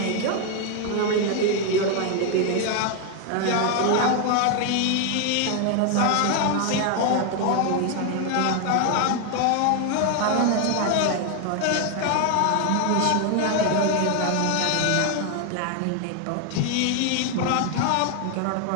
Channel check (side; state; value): both; different; correlation 0.01